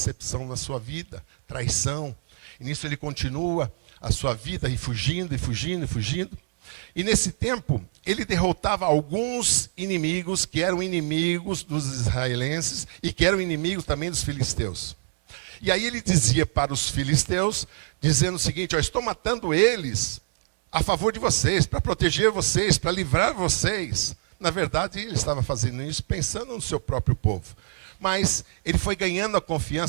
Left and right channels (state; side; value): silent; left; 62 dB below the other